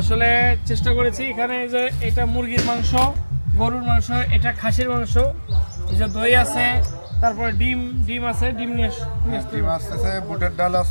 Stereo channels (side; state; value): both; inverted; correlation -1.00